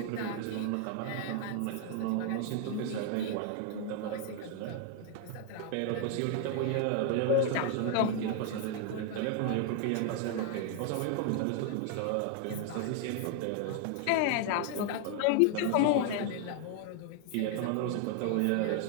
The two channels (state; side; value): different; both; correlation 0.00